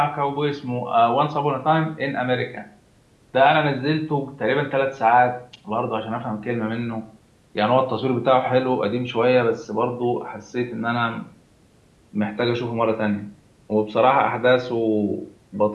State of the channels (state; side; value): identical; both; correlation 1.00